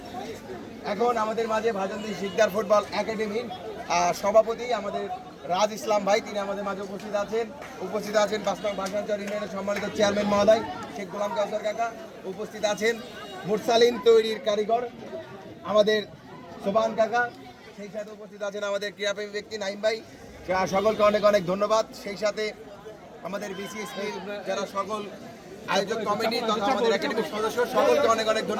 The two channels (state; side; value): identical; both; correlation 1.00